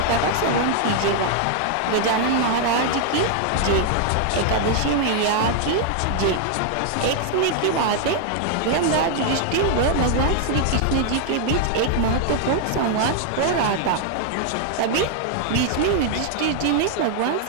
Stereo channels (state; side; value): different; both; correlation 0.00